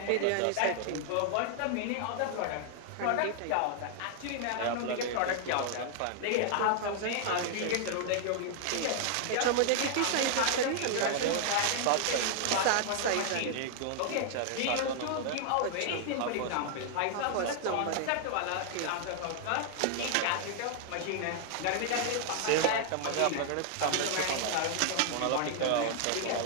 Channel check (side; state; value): both; different; correlation 0.00